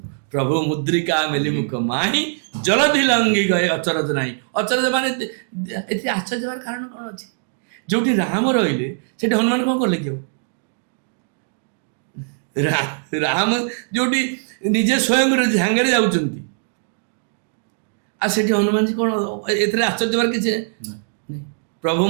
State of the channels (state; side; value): silent; left; digital silence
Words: ପ୍ରଭୁ ମୁଦ୍ରିକା ମେଲି ମୁଖ ମାହି ଜଲଧି ଲଙ୍ଘି ଗଏ ଅଚରଜ ନାହିଁ। ଅଚରଜ ମାନେ ଏଥିରେ ଆଶ୍ଚର୍ଯ୍ୟ ହେବାର କାରଣ କ'ଣ ଅଛି? ଯୋଉଠି ରାମ ରହିଲେ ସେଠି ହନୁମାନ କ'ଣ କଲେ କି? ରାମ ଯୋଉଠି ନିଜେ ସ୍ୱୟଂ ସାଙ୍ଗରେ ଯାଉଛନ୍ତି, ଆଉ ସେଠି ହନୁମାନଜୀ କ'ଣ? ଏଥିରେ ଆଶ୍ଚର୍ଯ୍ୟ ହେବାର କିଛି ପ୍ରଭୁ